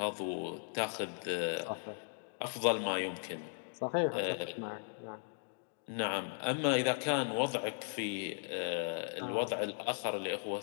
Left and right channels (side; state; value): right; silent; digital silence